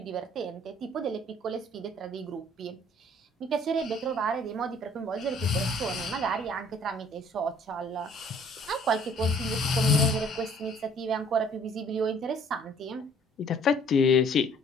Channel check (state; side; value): normal; both; correlation 0.58